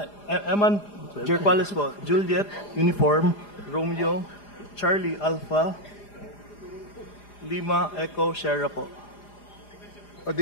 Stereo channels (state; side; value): late; right; 4.9 ms